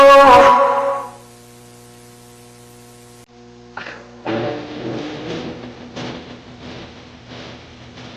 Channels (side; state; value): both; identical; correlation 1.00